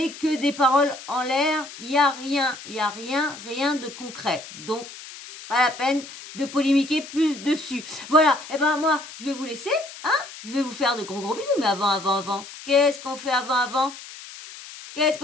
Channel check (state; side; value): noise; left; hiss, 15 dB below the sound